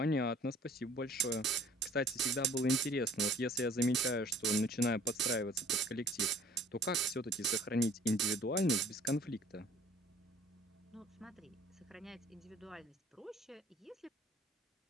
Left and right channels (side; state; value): both; normal; correlation 0.52